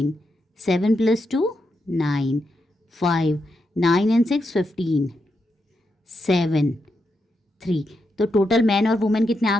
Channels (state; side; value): normal; both; correlation 0.84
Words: 7 + 2 9, 5, 9 and 6 15, 7 3। तो टोटल मैन और वुमेन कितने आ